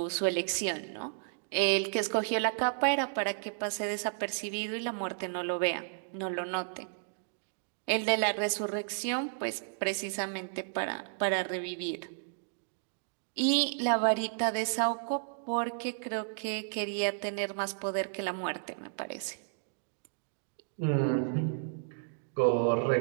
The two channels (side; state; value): left; silent; digital silence